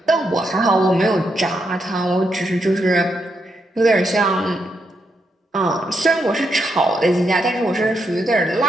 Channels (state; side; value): normal; both; correlation 0.81